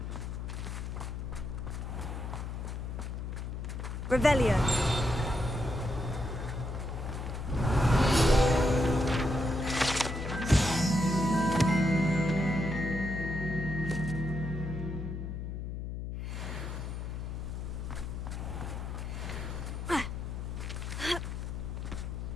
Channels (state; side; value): noise; left; hum, 5 dB below the sound